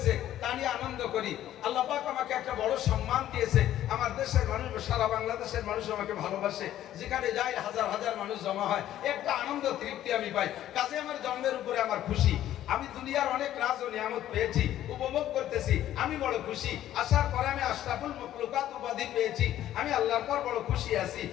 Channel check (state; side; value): quieter; right; 12.4 dB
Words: তা নিয়ে আনন্দ করি। আল্লাহ পাক আমাকে একটা বড় সম্মান দিয়েছে, আমার দেশের মানুষ, সারা বাংলাদেশের মানুষ আমাকে ভালোবাসে, যেখানে যাই হাজার হাজার মানুষ জমা হয়, একটা আনন্দ তৃপ্তি আমি পাই। কাজে আমার জন্মের উপরে আমার খুশি। আমি দুনিয়ার অনেক রাজ ও নিয়ামত পেয়েছি, উপভোগ করতেছি, আমি বড় খুশি। আসার পরে আমি আশরাফুল মাখলুকাত উপাধি পেয়েছি, আমি আল্লাহর পর বড় খুশি আছি,